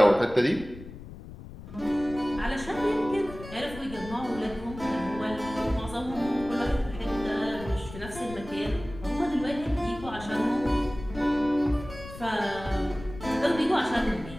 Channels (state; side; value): noise; left; rumble, 14 dB below the sound